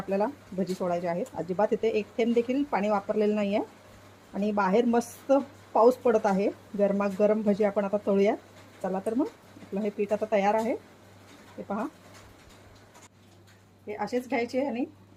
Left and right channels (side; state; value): both; identical; correlation 1.00